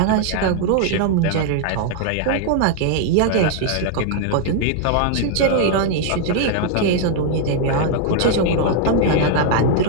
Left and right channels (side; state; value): both; different; correlation 0.00